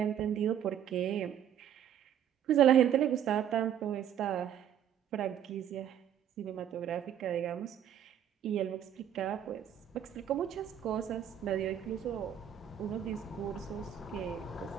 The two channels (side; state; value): left; quieter; 9.7 dB